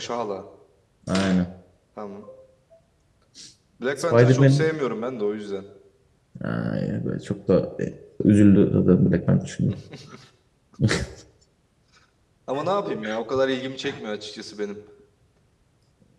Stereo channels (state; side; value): identical; both; correlation 1.00